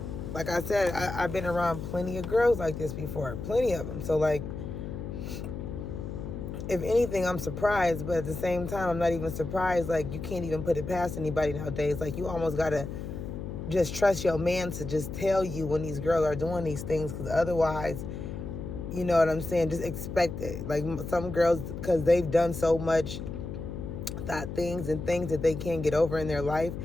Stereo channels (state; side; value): noise; left; hum, 7 dB below the sound